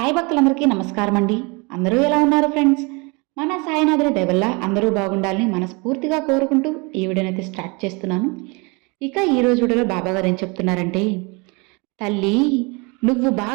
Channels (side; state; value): left; quieter; 29.0 dB